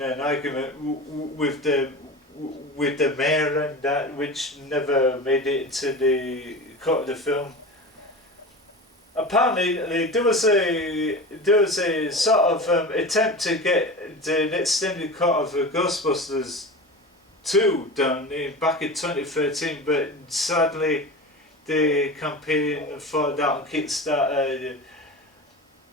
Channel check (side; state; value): both; normal; correlation 0.30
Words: an argument with the mayor and that, which never made it into the cut of the film. Apparently there was a sort of attempt to get an extended cut of Ghostbusters 2 done back in 2013, but sadly the campaign for that on Kickstarter